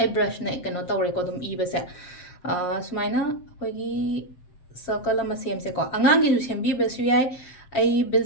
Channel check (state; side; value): late; right; 7.6 ms